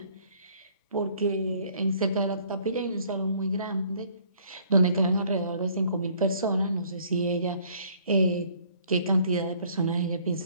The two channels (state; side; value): inverted; both; correlation -0.59